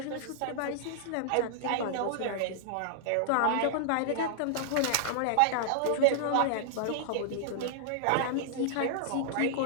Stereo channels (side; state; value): both; different; correlation -0.01